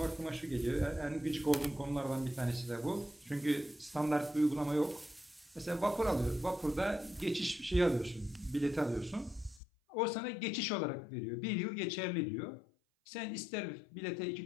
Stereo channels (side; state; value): right; drops out; at 9.6 s